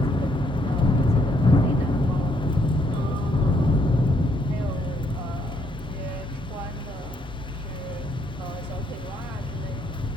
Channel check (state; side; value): normal; both; correlation 0.71